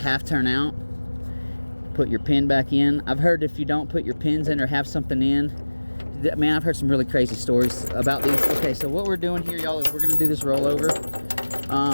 turn out. Put your pin back in. I've heard if you don't put your pins in or have something in, man, I've heard some really crazy stories about these. Okay, so what we're doing here, y'all, is we're going to do this rollover.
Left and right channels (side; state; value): both; inverted; correlation -1.00